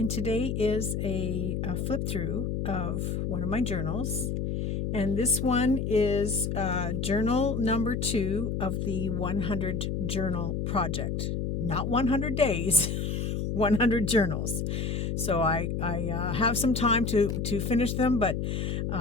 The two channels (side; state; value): left; noise; hum, 1 dB below the sound